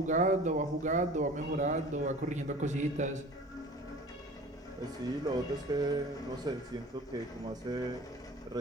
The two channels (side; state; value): both; normal; correlation 0.42